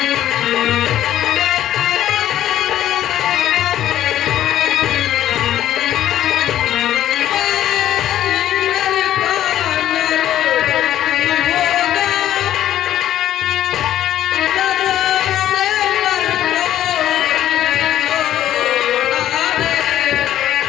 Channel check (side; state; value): right; quieter; 12.1 dB